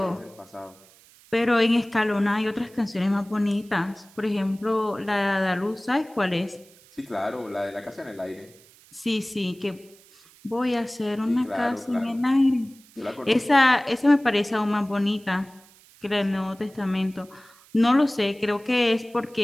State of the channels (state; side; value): noise; right; hiss, 26 dB below the sound